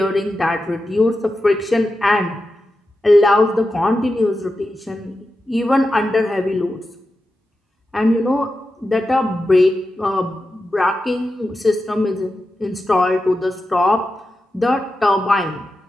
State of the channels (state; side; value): normal; both; correlation 0.90